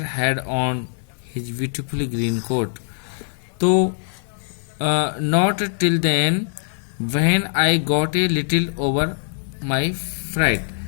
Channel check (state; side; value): silent; right; 57 dB below the other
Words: had on his beautiful green coat. तो not till then when I got a little over my fright,